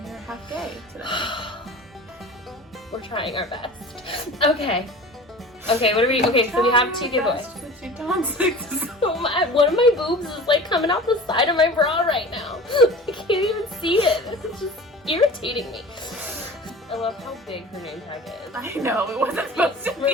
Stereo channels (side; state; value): both; normal; correlation 0.38